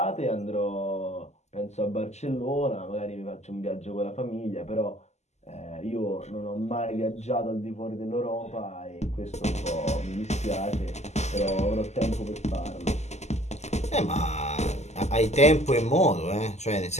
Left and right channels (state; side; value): late; right; 0.33 ms